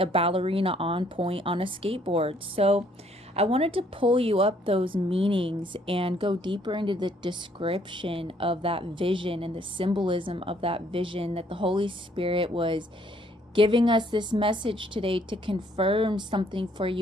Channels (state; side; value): normal; both; correlation 0.65